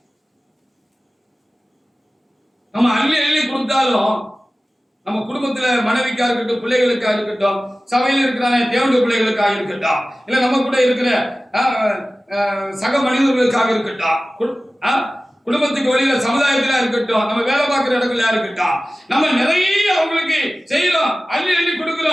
நம்ம அள்ளி கொடுத்தாலும் நம்ம குடும்பத்துல மனைவிக்கா இருக்கட்டும், பிள்ளைகளுக்காக இருக்கட்டும், சபையில் இருக்கிற தேவனுடைய பிள்ளைகளுக்காக இருக்கட்டும், இல்ல நம்ம கூட இருக்கிற சக மனிதர்களுக்காக இருக்கட்டும், குடும்பத்துக்கு வெளியில சமுதாயத்தில இருக்கட்டும், நம்ம வேலை பார்க்கிற இடத்துல இருக்கட்டும், நம்ம நிறைய அவங்களுக்கு செய்யறோம், அள்ளி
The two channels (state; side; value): normal; both; correlation 0.96